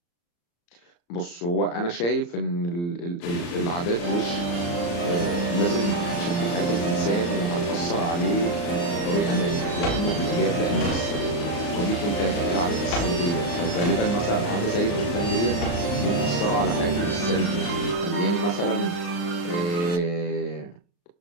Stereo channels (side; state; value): right; late; 35 ms